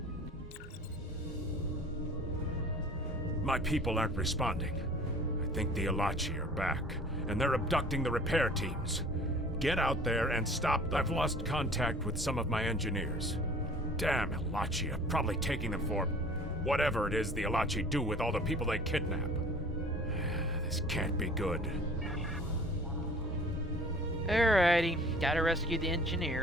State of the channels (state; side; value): normal; both; correlation 0.48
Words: My people aren't responding. I think the Alachi are back, and they're abducting the repair teams. Get out there and stop. I've lost contact with some of my engineers. Damn Alachi are probably taking them for whatever it is the Alachi do with all the people they kidnap. This can't be good. Alrighty, gotta rescue the